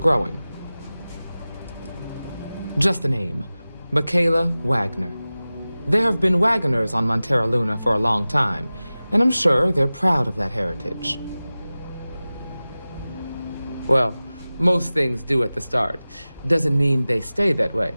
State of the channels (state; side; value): inverted; both; correlation -0.97